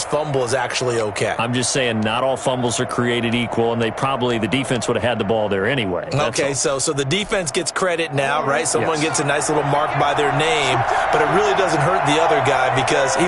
fumble is actually okay. I'm just saying not all fumbles are created equal, and the defense would have had the ball there anyway. Okay, so the defense gets credit now, right? Someone gets a nice little mark by their name, but it really doesn't hurt the other guy because he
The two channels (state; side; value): identical; both; correlation 1.00